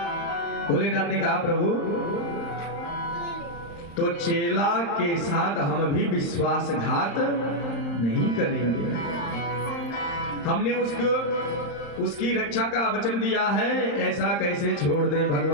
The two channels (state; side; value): late; right; 35 ms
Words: भोलेनाथ ने कहा प्रभु तो चेला के साथ हम भी विश्वासघात नहीं करेंगे, हमने उसकी रक्षा का वचन दिया है, ऐसा कैसे छोड़ दे?